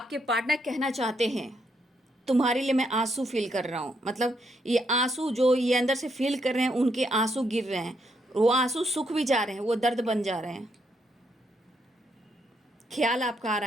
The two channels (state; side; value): normal; both; correlation 0.77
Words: पार्टनर कहना चाहते हैं तुम्हारे लिए मैं आंसू फील कर रहा हूँ। मतलब ये आंसू जो ये अंदर से फील कर रहे हैं, उनके आंसू गिर रहे हैं, वो आंसू सूख भी जा रहे हैं, वो दर्द बन जा रहे हैं। ख्याल आपका आ